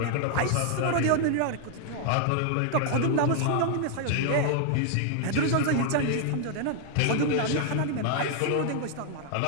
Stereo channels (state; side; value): different; both; correlation 0.00